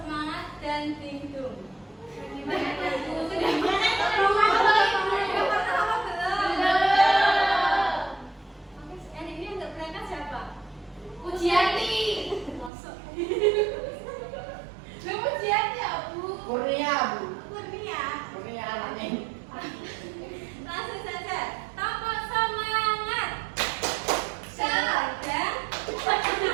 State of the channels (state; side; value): drops out; left; at 12.7 s